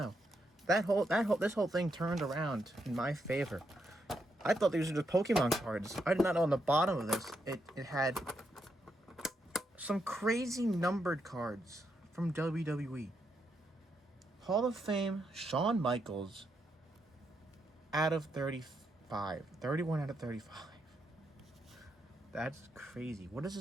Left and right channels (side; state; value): both; normal; correlation 0.80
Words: This whole thing turned around in my favor. I thought these were just Pokemon cards. I did not know on the bottom of this it had some crazy numbered cards from WWE. Hall of Fame, Shawn Michaels, out of 35. 31 out of 35. That's crazy. What is